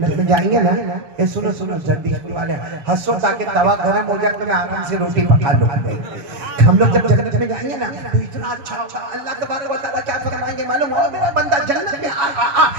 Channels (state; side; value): late; left; 7.2 ms